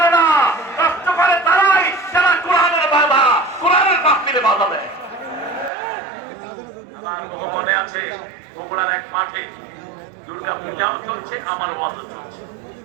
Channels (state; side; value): drops out; left; at 5.7 s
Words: না। নষ্ট করে তারাই যারা কোরআনের বাধা, কোরআনের মাহফিলে বাধা দেয়। আমার বহু মনে আছে বগুড়ার এক মাঠে দুর্গা পূজাও চলছে, আমার ওয়াজও চলছে।